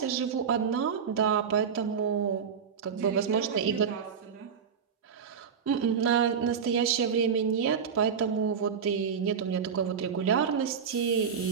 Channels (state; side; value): quieter; left; 6.8 dB